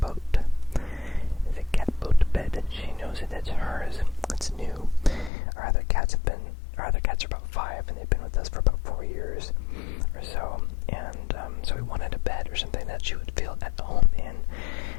There's a cat boat bed, and she knows that it's hers. It's new. Our other cats are about 5, and they've been with us for about 4 years or so. And so we wanted a bed or something that she would feel at home in.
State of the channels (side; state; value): right; drops out; at 5.3 s